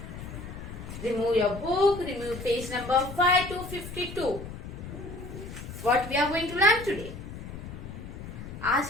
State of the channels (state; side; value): noise; left; rumble, 10 dB below the sound